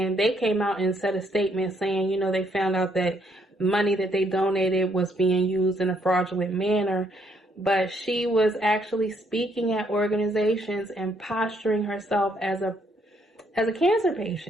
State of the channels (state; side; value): normal; both; correlation 0.71